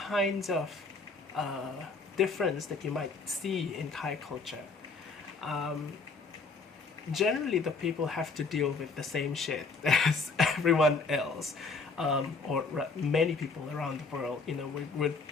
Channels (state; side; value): quieter; right; 4.2 dB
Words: of difference that you might see in Thai culture, generally the people have to deal with the same shit as everyone else, or many people around the world. We're